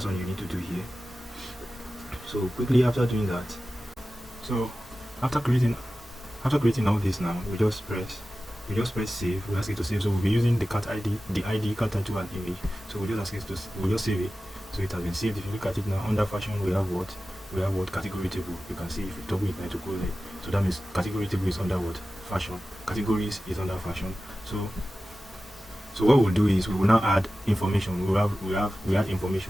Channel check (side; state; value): both; normal; correlation 0.95